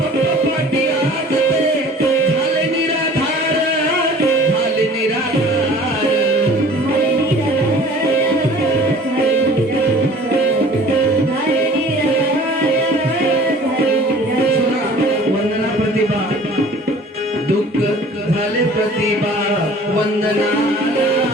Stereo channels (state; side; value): normal; both; correlation 0.48